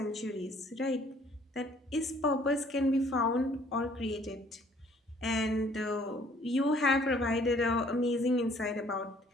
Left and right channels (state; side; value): normal; both; correlation 0.59